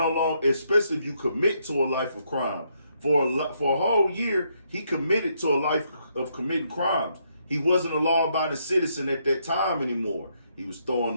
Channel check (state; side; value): inverted; both; correlation -0.75